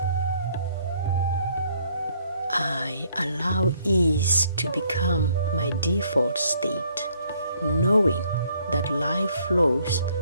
I allow ease to become my default state, knowing that life flows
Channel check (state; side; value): inverted; both; correlation -0.66